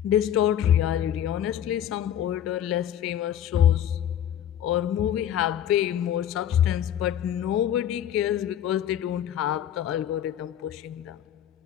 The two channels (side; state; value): right; quieter; 10.4 dB